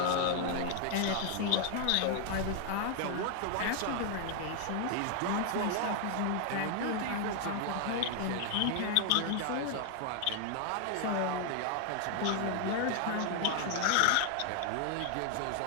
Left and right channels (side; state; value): both; different; correlation 0.00